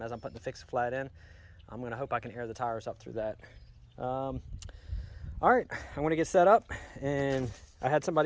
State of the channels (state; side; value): identical; both; correlation 1.00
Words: as I'm putting the fixed flat in. I'm gonna hope I can air the tires up through that. All right, I'm gonna get set up, and I had